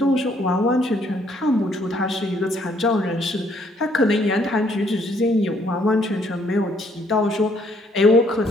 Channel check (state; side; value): normal; both; correlation 0.67